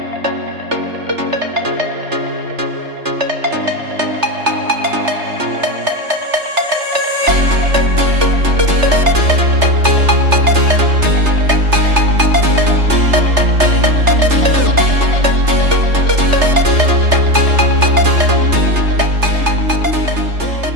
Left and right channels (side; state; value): left; late; 3.3 ms